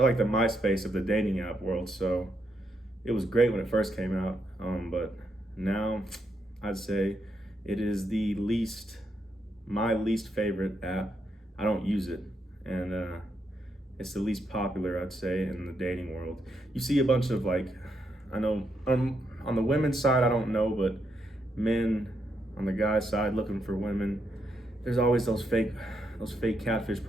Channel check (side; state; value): both; normal; correlation 0.79